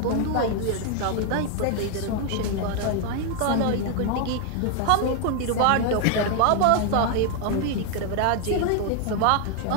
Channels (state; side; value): different; both; correlation 0.00